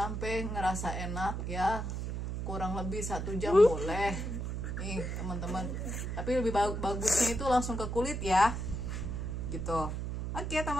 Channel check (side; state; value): right; noise; hum, 3 dB below the sound